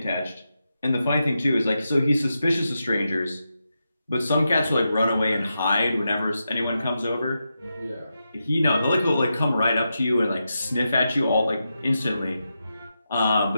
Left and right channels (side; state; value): both; inverted; correlation -0.88